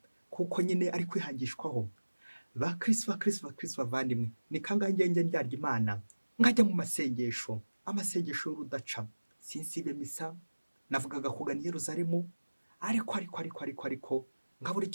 kuko nyine ari kwihangishwaho. Bakristo bavandimwe, ni kangahe ngenge ndyarya Imana nkajya mu masengesho, amasengesho y'urudaca, sinsibe misa, navugaga kugana i Yerusalemu, ariko ngabura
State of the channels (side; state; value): both; inverted; correlation -1.00